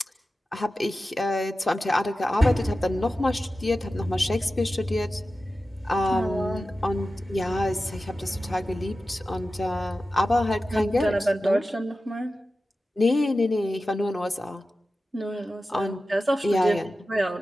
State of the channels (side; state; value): both; normal; correlation 0.94